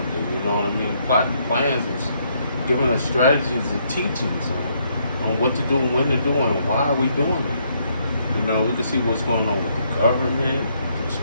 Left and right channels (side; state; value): both; inverted; correlation -0.72